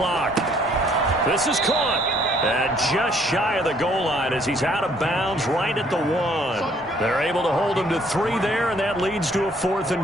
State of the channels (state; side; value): normal; both; correlation 0.63